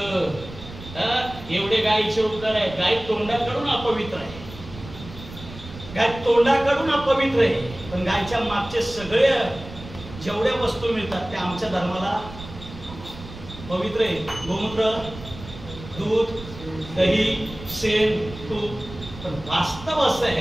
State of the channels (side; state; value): right; noise; rumble, 14 dB below the sound